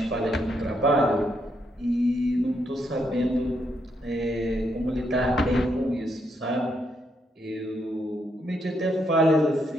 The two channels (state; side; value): normal; both; correlation 0.77